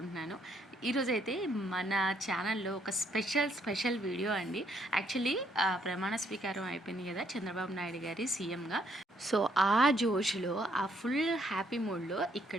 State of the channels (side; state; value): both; normal; correlation 0.70